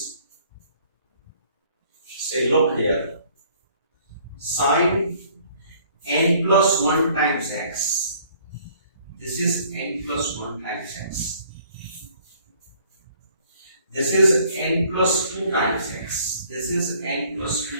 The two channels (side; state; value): both; inverted; correlation -0.59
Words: say, look here, sin n plus 1 times x. This is n plus 1 times x. This is n plus 2 times x. This is n plus